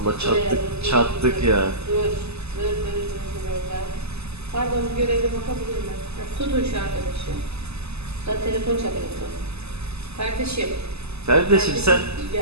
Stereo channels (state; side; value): late; left; 0.79 ms